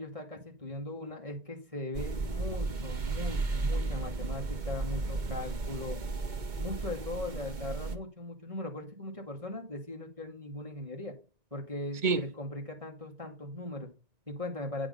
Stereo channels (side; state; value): left; late; 2.2 ms